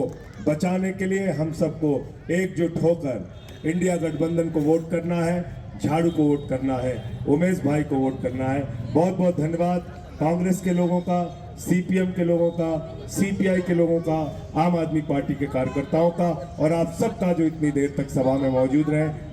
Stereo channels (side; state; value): both; identical; correlation 1.00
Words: बचाने के लिए हम सबको एकजुट होकर इंडिया गठबंधन को वोट करना है, झाड़ू को वोट करना है, उमेश भाई को वोट करना है। बहुत बहुत धन्यवाद कांग्रेस के लोगों का, सीपीएम के लोगों का, सीपीआई के लोगों का, आम आदमी पार्टी के कार्यकर्ताओं का और आप सबका जो इतनी देर तक सभा में मौजूद रहे।